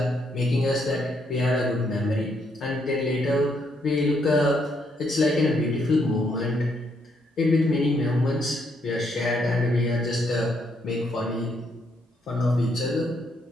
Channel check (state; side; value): normal; both; correlation 0.74